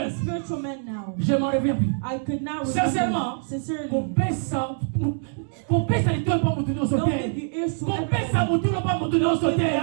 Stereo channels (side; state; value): left; silent; digital silence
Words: spiritual man now. Je m'en reviens plus. I could not Sincèrement, remember. Sincerely, Qu'on paie ça, ne tourne pas mon tour don't give sauter. your ears to Qu'on paie ça, everyone. mon tour pas mon tour sauter.